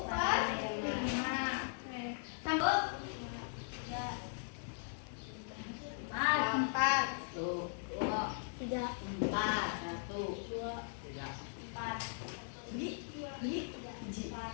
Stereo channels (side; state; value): right; silent; digital silence